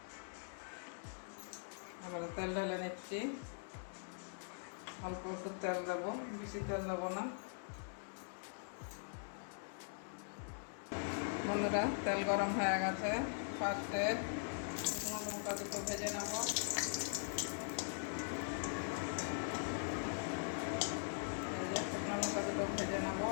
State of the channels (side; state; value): right; silent; digital silence